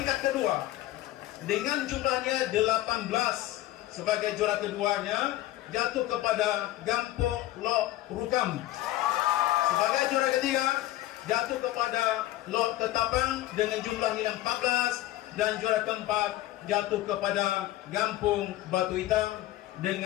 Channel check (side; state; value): right; quieter; 15.4 dB